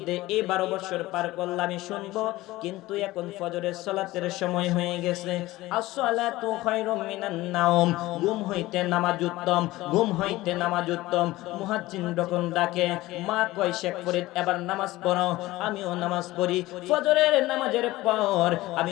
এই 12 বছর পার করলাম আমি শুনবো, কিন্তু এখন ফজরের সালাতের সময় হয়ে গেছে। আসসালাতু খায়রুম মিনান নাওম, ঘুম হইতে নামাজ উত্তম, ঘুম হইতে নামাজ উত্তম। মুয়াজ্জিন যখন ডাকে, মা কয়, শেখ ফরিদ এবার নামাজ পড়ো। আমিও নামাজ পড়ি। ফজরের নামাজের পর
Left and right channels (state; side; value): quieter; right; 18.1 dB